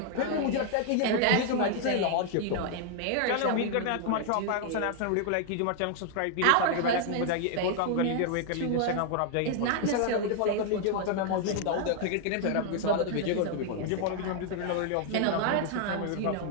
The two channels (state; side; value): different; both; correlation 0.00